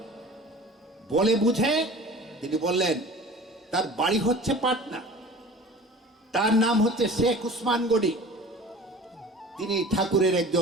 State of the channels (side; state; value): both; normal; correlation 0.41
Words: বলে বুঝে তিনি বললেন, তার বাড়ি হচ্ছে পাটনা, তার নাম হচ্ছে শেখ উসমান গনি, তিনি ঠাকুরের